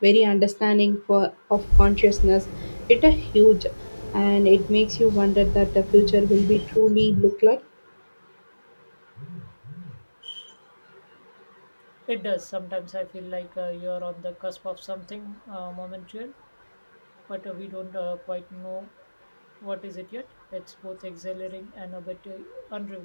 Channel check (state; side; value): inverted; both; correlation -1.00